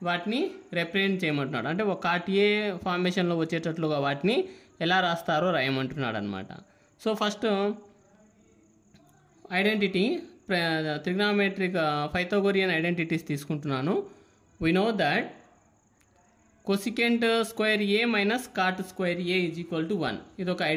వాటిని రిప్రజెంట్ చేయమంటున్నాడు. అంటే ఒక కాట్ ఏ ఫార్మేషన్లో వచ్చేటట్లుగా వాటిని ఎలా రాస్తారో రాయమంటున్నాడు అనమాట. So first identity trigonometric Pythagorean identities తీసుకుంటున్నాను. We know that cosecant square A minus cot square A is equal to 1. ఇది ఒక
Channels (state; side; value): identical; both; correlation 1.00